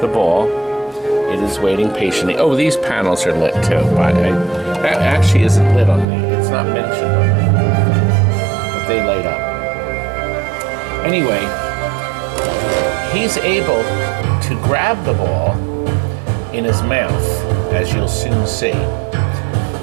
the ball, it is waiting patiently. Oh, these panels are lit too. That actually isn't lit on me. It's not mentioned on me. But they light up. Anyway, he's able to grab the ball in his mouth, as you'll soon see.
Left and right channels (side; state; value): left; drops out; at 6.1 s